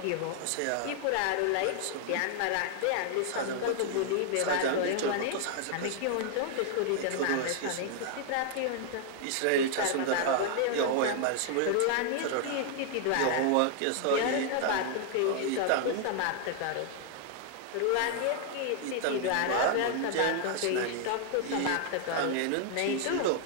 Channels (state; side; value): different; both; correlation 0.00